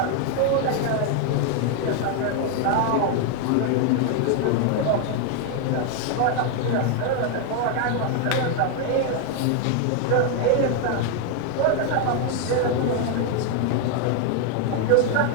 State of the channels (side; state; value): both; different; correlation 0.00